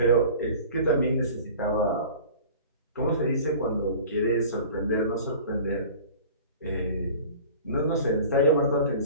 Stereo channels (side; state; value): both; inverted; correlation -0.43